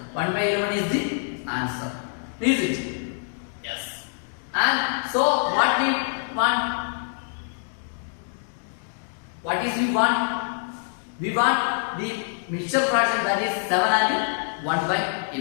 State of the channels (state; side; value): silent; right; 61 dB below the other